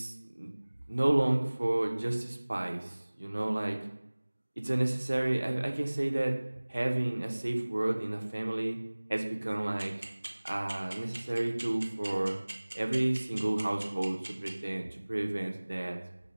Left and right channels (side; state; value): both; inverted; correlation -1.00